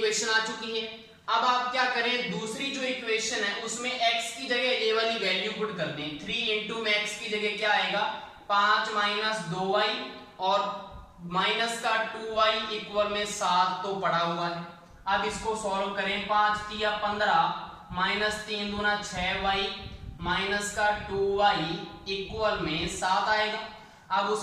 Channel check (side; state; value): both; identical; correlation 1.00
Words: आ चुकी है। अब आप क्या करें, दूसरी जो इक्वेशन है उसमें x की जगह ये वाली वैल्यू पुट कर दें। 3 × में x की जगह क्या आएगा, 5 - 2y और माइनस का 2y = 7 तो पड़ा हुआ है। अब इसको सॉल्व करें, 5 × 3 = 15 माइनस 3 दूना 6y माइनस का 2y = 7 आएगा। अब